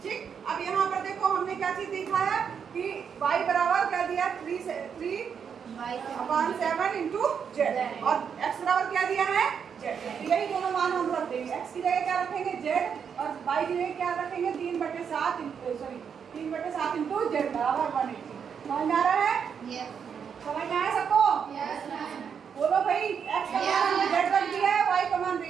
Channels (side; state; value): left; quieter; 7.1 dB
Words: ठीक। अब यहाँ पर देखो हमने क्या चीज देखा है कि y बराबर क्या दिया? 3/7 इंटू z, और x बराबर क्या दिया है? z। यही दोनों मान हम रख देंगे। x की जगह क्या रखेंगे? z, और y की जगह क्या रखेंगे? 3/7 इंटू z बराबर 180। समझ में आ रहा है? समझ में आया सबको? बोलो भाई, x का मान हमने z रख दिया है, y का मान